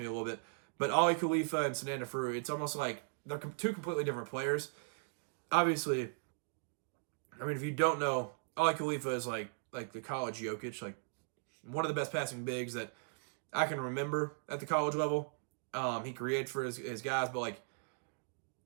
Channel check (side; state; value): left; silent; digital silence